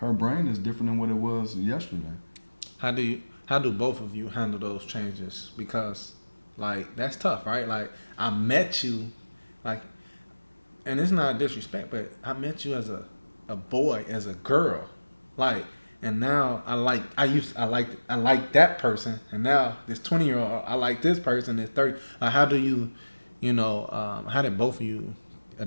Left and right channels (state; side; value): inverted; both; correlation -1.00